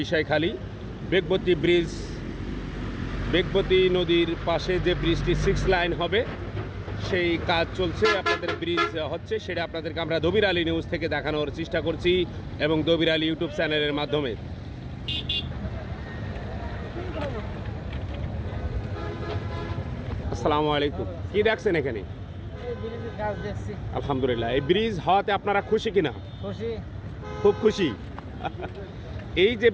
বিষয়খালী বেগবতী নদীর পাশে যে ব্রিজটি 6 লাইন হবে সেই কাজ চলছে, আপনাদের ব্রিজ হচ্ছে, সেটা আপনাদেরকে আমরা দবির আলী নিউজ থেকে দেখানোর চেষ্টা করছি এবং দবির আলী ইউটিউব চ্যানেলের মাধ্যমে। আসসালামু আলাইকুম। কি দেখছেন এখানে? আলহামদুলিল্লাহ। এই ব্রিজ হওয়াতে আপনারা খুশি কিনা? খুশি, খুব খুশি। এই যে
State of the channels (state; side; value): identical; both; correlation 1.00